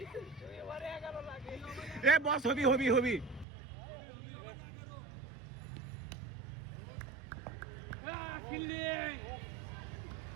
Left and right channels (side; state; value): left; drops out; at 3.5 s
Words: এ বস হবি